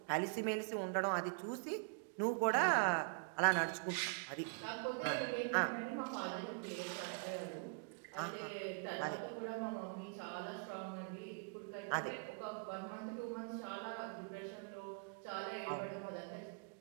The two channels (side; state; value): left; quieter; 37.6 dB